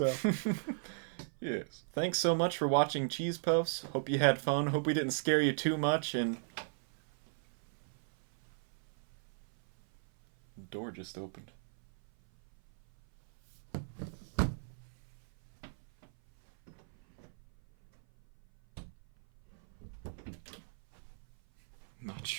Yes. Thanks so much for watching Cheese Puffs. Hope you had fun. Hope we didn't scare you too much, and... The door just opened. Not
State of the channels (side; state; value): left; silent; 54 dB below the other